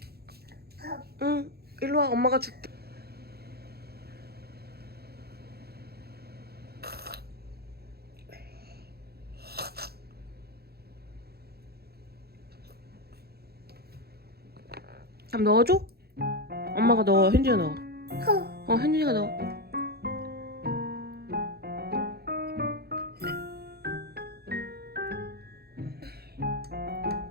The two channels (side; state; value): left; late; 0.46 ms